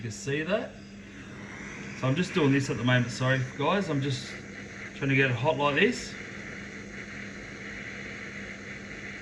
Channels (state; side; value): identical; both; correlation 1.00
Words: see that. So I'm just doing this at the moment, sorry guys, I'm just trying to get it hot like this.